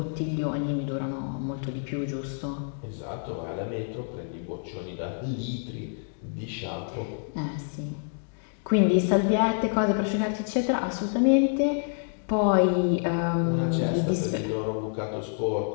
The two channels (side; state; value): right; silent; digital silence